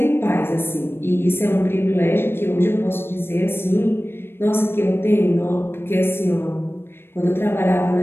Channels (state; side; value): late; right; 0.11 ms